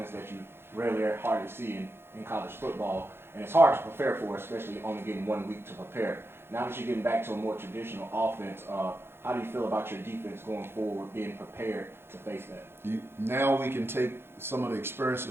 that you rarely or hardly see in college football, and it's hard to prepare for, especially only getting 1 week to prepare. Now that you're getting back to a more traditional offense, How do you feel about your defense going forward, being prepared to face that? Now we can take some of the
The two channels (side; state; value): left; late; 0.11 ms